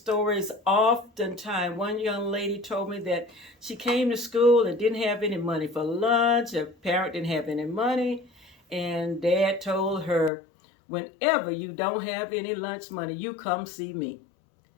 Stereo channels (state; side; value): drops out; right; at 10.3 s